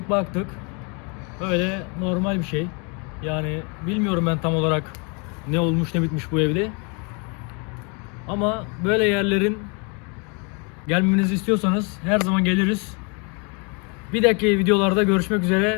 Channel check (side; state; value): right; quieter; 34.1 dB